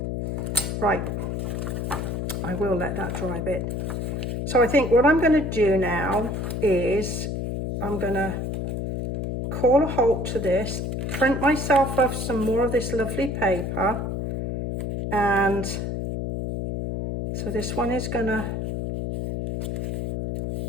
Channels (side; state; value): left; noise; hum, 2 dB below the sound